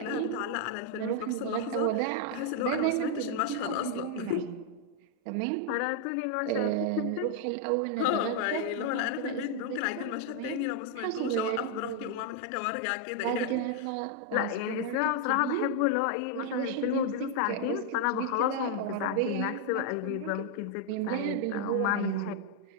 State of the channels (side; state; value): both; different; correlation 0.00